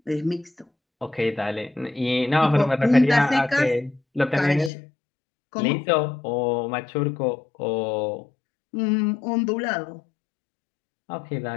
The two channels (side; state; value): right; drops out; at 4.7 s